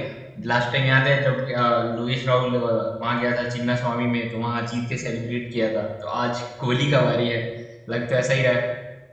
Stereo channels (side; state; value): both; identical; correlation 1.00